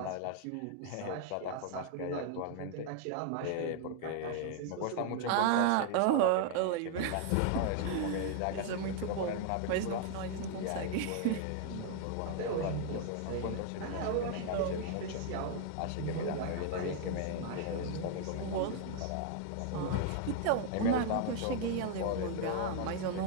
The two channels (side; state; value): both; different; correlation 0.00